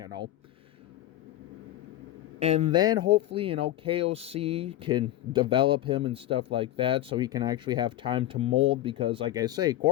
And then hopefully, KOC can develop him and stuff like that so he can actually have time to mold because, like I say,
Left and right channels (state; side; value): quieter; right; 14.1 dB